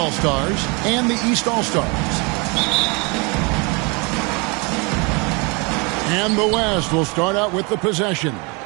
and the East All-Stars. And the West will start out with the possession.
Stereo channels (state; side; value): quieter; left; 29.8 dB